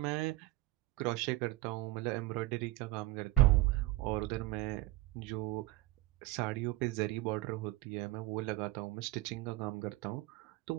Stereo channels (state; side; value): quieter; left; 18.5 dB